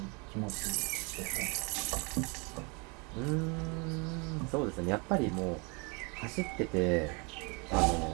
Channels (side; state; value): left; quieter; 31.3 dB